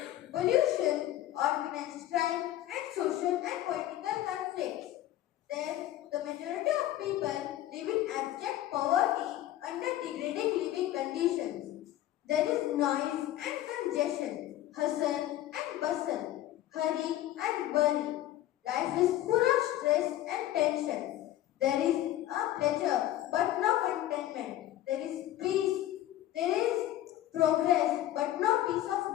pollution, organized crime, and social and political conflicts. Then, the majority of people live in abject poverty under degrading living conditions. There is noise and congestion, hustle and bustle, hurry and worry. Life is full of stress and tension. There is a pleasure but no contentment. There is peace, there is progress but no peace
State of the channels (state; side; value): quieter; right; 13.7 dB